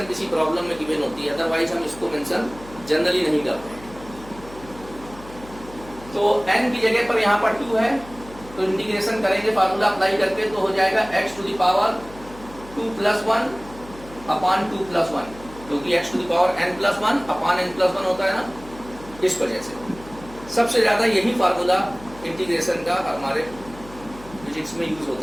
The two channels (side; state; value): left; noise; hum, 18 dB below the sound